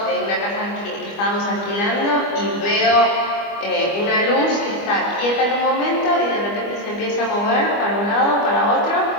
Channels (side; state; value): right; late; 25 ms